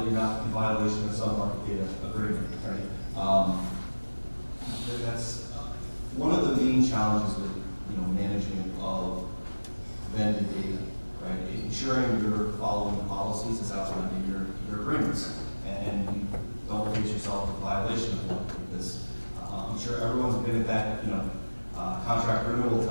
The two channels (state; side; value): inverted; both; correlation -1.00